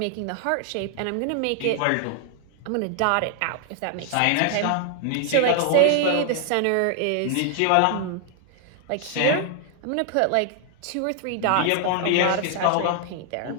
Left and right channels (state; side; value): different; both; correlation 0.00